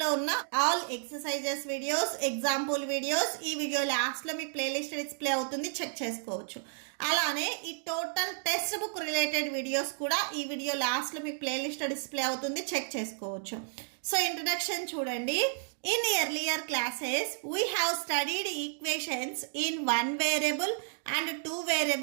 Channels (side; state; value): left; silent; digital silence